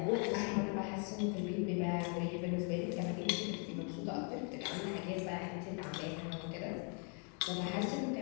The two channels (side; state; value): right; quieter; 39.8 dB